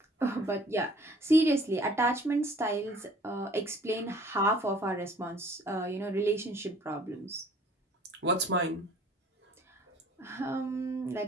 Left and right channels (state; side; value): normal; both; correlation 0.54